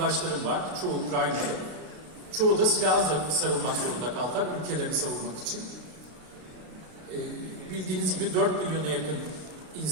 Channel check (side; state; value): left; late; 33 ms